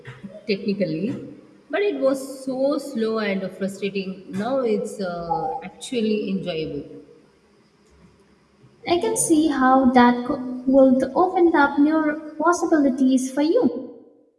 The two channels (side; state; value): both; identical; correlation 1.00